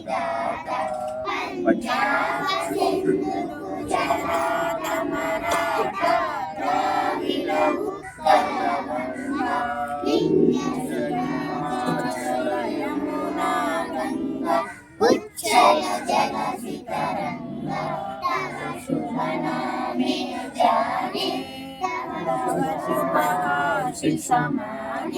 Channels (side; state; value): both; identical; correlation 1.00